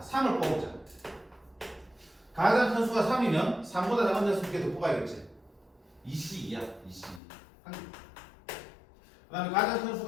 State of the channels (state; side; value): drops out; right; at 7.2 s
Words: 3을 뽑자. 가장 큰 수가 3이면 3보다 작은 데서 2개 더 뽑아야겠지. 2C2야. 2C. 한 개. 그 다음에 가장 큰